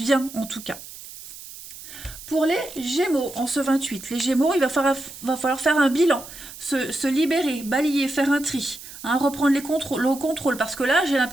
en tout cas. Pour les Gémeaux, en ce 28, les Gémeaux, il va falloir faire un bilan, se libérer, balayer, faire un tri, hein, reprendre le contrôle. Parce que là, j'ai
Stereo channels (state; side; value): noise; right; hiss, 15 dB below the sound